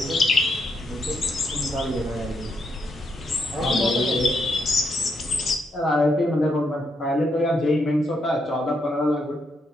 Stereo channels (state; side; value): normal; both; correlation 0.78